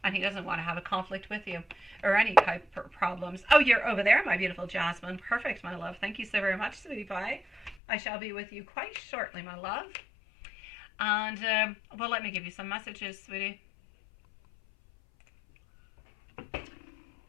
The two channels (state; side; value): drops out; right; at 7.8 s